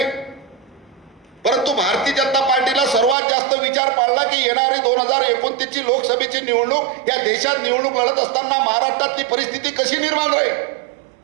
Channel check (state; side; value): drops out; left; at 3.2 s